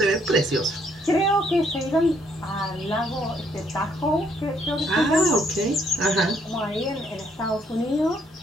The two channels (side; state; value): both; normal; correlation 0.69